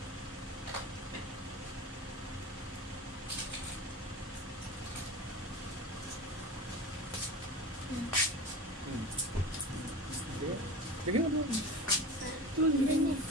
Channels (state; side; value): normal; both; correlation 0.32